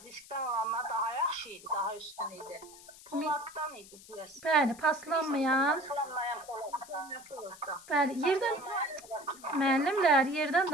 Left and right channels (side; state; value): left; noise; hiss, 19 dB below the sound